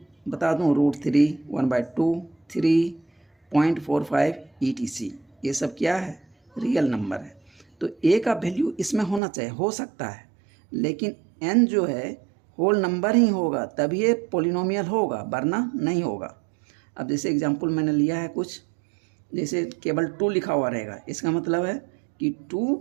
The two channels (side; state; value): left; drops out; at 9.2 s